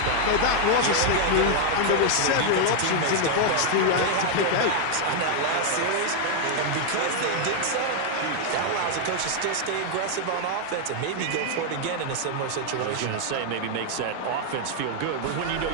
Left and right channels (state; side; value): different; both; correlation 0.00